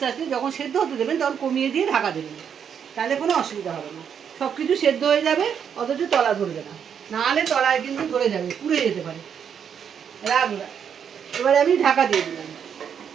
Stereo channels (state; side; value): quieter; left; 7.8 dB